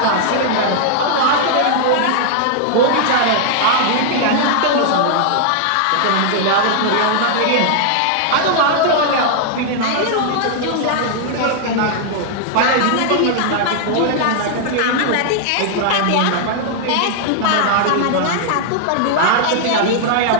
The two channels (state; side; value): different; both; correlation 0.00